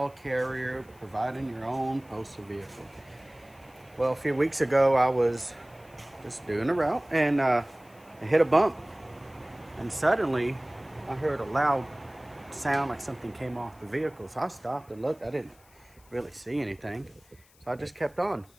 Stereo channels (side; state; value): left; noise; hiss, 29 dB below the sound